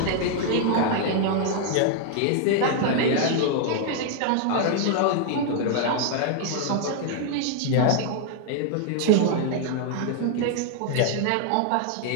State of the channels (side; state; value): both; different; correlation 0.00